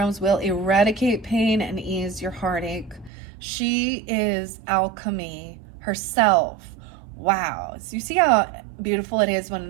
will eradicate pain and ease your heartache. She is alchemy herself. Wow. So you see how beautiful it is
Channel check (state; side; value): drops out; left; at 3.1 s